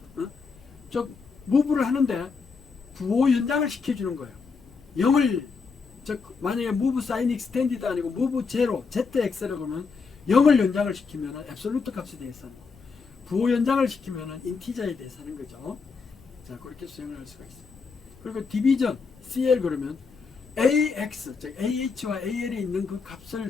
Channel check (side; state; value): right; quieter; 4.9 dB